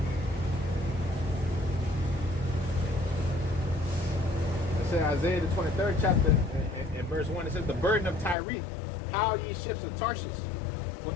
Isaiah the 23rd chapter in verse 1, it says, the burden of Tyre, how ye ships of Tarshish, for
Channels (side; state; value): right; drops out; at 8.3 s